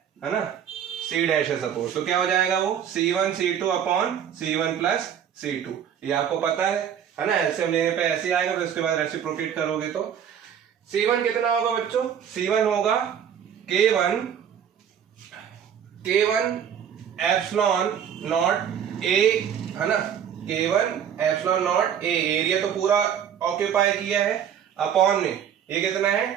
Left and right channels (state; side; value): quieter; left; 8.7 dB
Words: ना, C' है सपोज, तो क्या हो जाएगा वो C1 C2 upon C1 plus C2, ये आपको पता है ना। एलसीएम लेने पे ऐसे ही आएगा, फिर उसके बाद रेसिप्रोकेट करोगे तो C1 कितना होगा बच्चों, C1 होगा K1 एप्सिलॉन नॉट ए, है ना, K1 epsilon not a, area तो पूरा ऑक्यूपाई किया है, अपॉन में ये कितना है